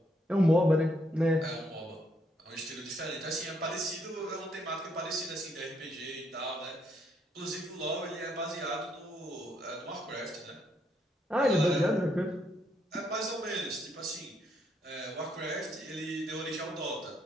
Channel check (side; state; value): both; normal; correlation 0.73